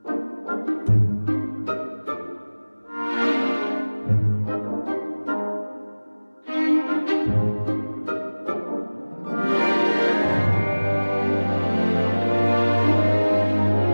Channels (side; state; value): both; inverted; correlation -1.00